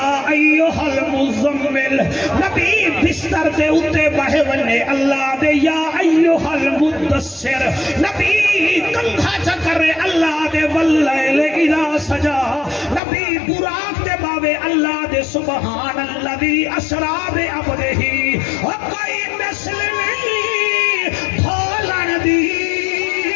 ایوہ المزمل نبی بستر دے اتے بہے ونے اللہ دے یا ایوہ المدثر نبی کنگھا چکرے اللہ دے واللیل اذا سجا نبی براق دے باوے اللہ دے سبحان اللہ دی اسراب عبدہی کوئی مثل نہیں بھولن دی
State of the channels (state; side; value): drops out; right; at 13.0 s